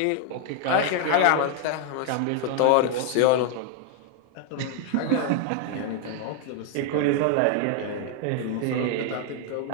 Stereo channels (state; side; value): different; both; correlation 0.00